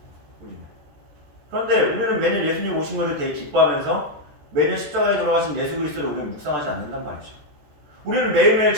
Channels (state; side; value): late; left; 14 ms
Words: 그런데 우리는 매년 예수님 오신 것을 되게 기뻐하면서 매년 십자가에 돌아가신 예수 그리스도를 우리는 묵상하지 않는단 말이죠. 우리는 매일매일